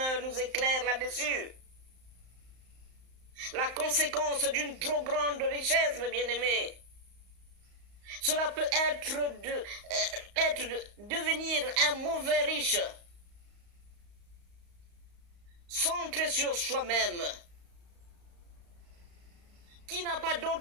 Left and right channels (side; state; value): left; late; 35 ms